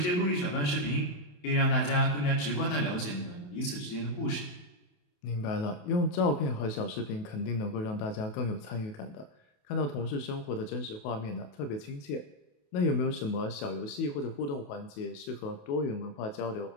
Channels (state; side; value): late; right; 28 ms